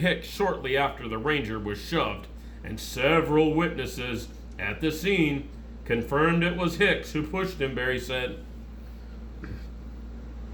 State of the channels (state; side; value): identical; both; correlation 1.00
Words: shortly after the ranger was shoved, and several witnesses at the scene confirmed it was Hicks who pushed him, Berry said.